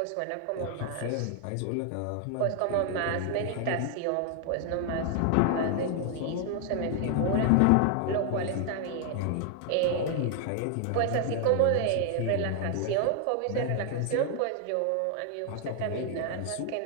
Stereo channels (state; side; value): different; both; correlation 0.00